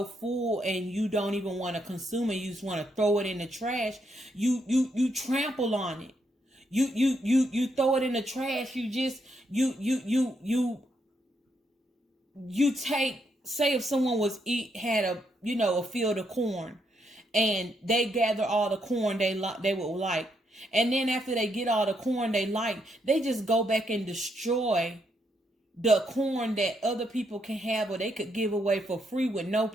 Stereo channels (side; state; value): both; normal; correlation 0.77